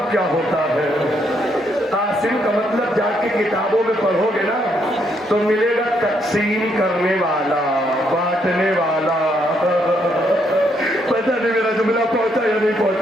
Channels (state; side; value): normal; both; correlation 0.74